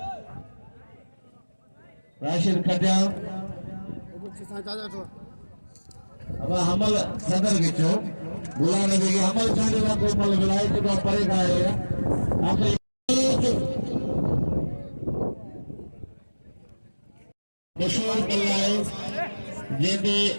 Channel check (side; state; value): both; inverted; correlation -1.00